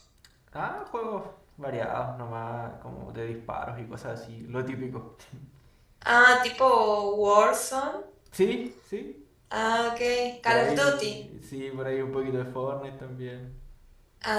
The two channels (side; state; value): both; identical; correlation 1.00